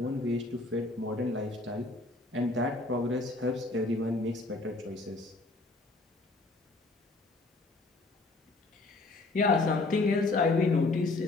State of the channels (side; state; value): right; quieter; 3.1 dB